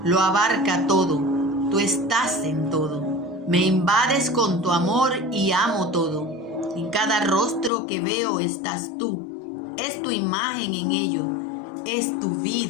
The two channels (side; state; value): right; drops out; at 7.7 s